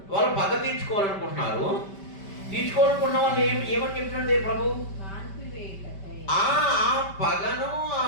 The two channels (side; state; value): right; late; 5.1 ms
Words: వాళ్ళు పగ తీర్చుకోవాలనుకుంటున్నారు. తీర్చుకోవాలనుకున్న వాళ్ళు ఏమని చెప్తున్నాడు ప్రభు? ఆ పగను, ఆ